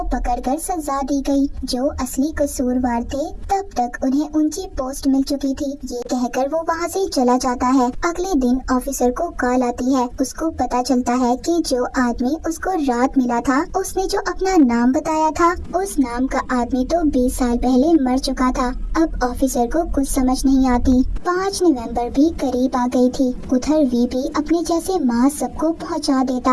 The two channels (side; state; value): both; identical; correlation 1.00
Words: पकड़कर सजा दी गई जो असली कसूरवार थे। तब तक उन्हें ऊंची पोस्ट मिल चुकी थी। ये कहकर वो वहाँ से चला जाता है। अगले दिन ऑफिसर को कॉल आती है। उसको पता चलता है कि जो आदमी उसको रात मिला था उसने जो अपना नाम बताया था उस नाम का आदमी तो 20 साल पहले मर चुका था। अब ऑफिसर को कुछ समझ नहीं आती। 5 नवंबर भी करीब आ गई थी। उधर वी भी अपने जैसे मास सबको पहुंचा देता